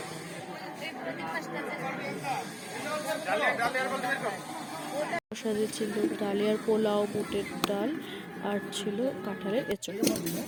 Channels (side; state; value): both; identical; correlation 1.00